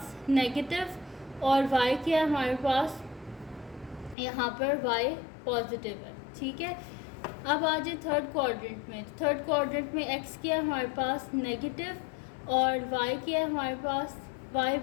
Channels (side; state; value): right; drops out; at 4.2 s